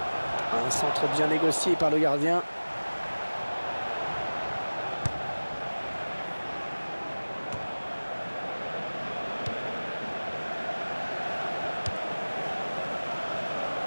centre bien négocié par le gardien.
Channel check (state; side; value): inverted; both; correlation -1.00